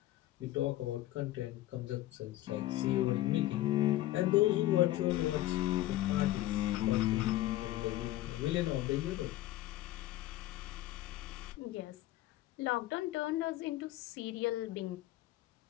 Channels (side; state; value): right; quieter; 15.4 dB